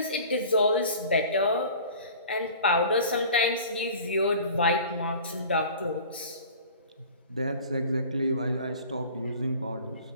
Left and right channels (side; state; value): both; inverted; correlation -0.43